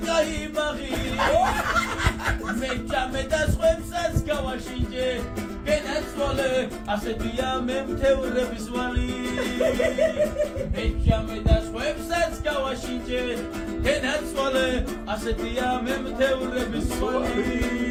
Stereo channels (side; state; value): both; identical; correlation 1.00